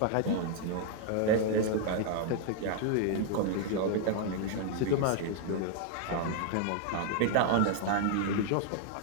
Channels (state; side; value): different; both; correlation 0.00